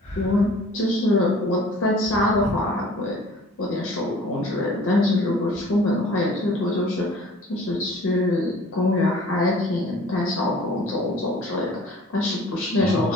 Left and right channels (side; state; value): both; normal; correlation 0.49